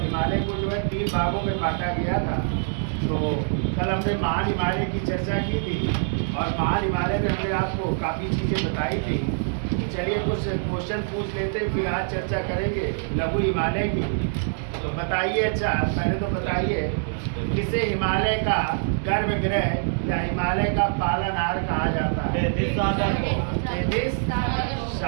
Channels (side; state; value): left; silent; digital silence